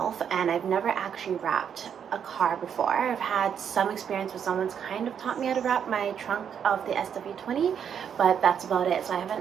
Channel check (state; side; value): quieter; left; 8.0 dB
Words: and I've never actually wrapped a car before. I've had some experience where someone's kind of taught me how to wrap my trunk of the SW20, but that's about it. So I